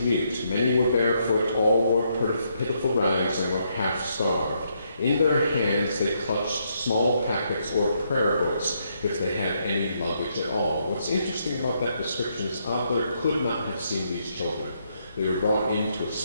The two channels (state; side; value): inverted; both; correlation -0.76